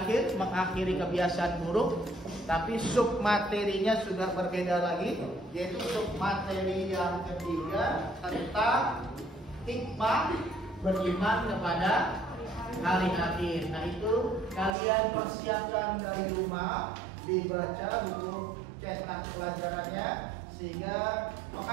mengakhiri kebiasaan buruk. Tapi sub materinya sudah berbeda lagi, yaitu sub materi yang ketiga tentang hikmah beriman kepada hari akhir. Nah itu kalian persiapkan dari rumah, dibaca buku cetak pelajarannya sehingga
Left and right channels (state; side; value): drops out; left; at 14.7 s